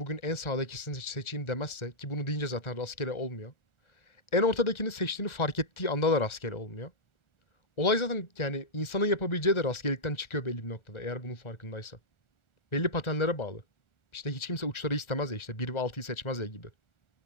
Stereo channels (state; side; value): late; right; 1.4 ms